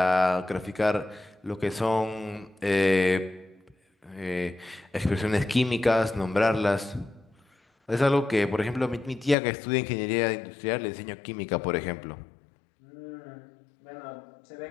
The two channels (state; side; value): drops out; right; at 9.3 s